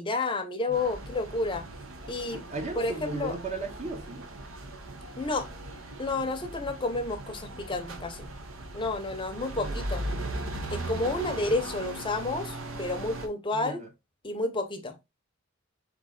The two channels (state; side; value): normal; both; correlation 0.28